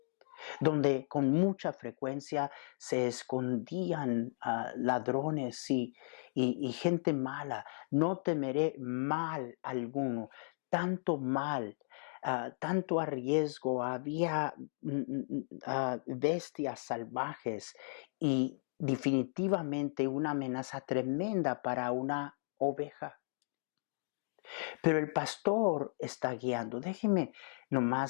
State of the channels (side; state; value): right; silent; digital silence